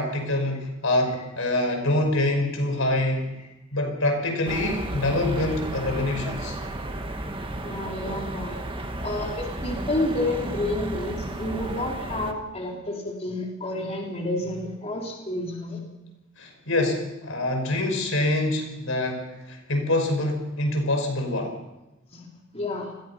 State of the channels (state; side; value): normal; both; correlation 0.25